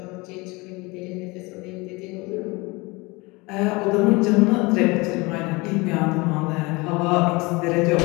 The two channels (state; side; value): quieter; right; 24.8 dB